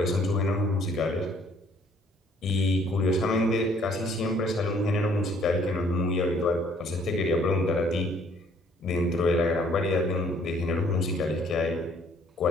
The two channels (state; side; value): normal; both; correlation 0.61